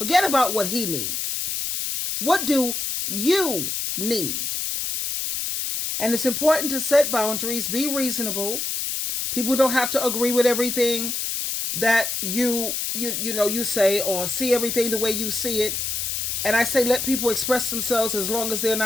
about what he needs. What do you need? And it's important to set boundaries, be reasonable. People don't have to agree with everything that you say or see everything the way you see it. And I say let people express themselves as long as they're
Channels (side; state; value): left; noise; hiss, 2 dB below the sound